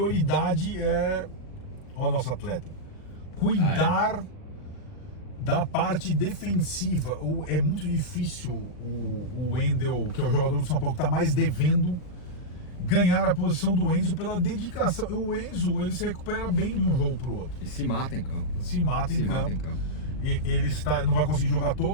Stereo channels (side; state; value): right; late; 39 ms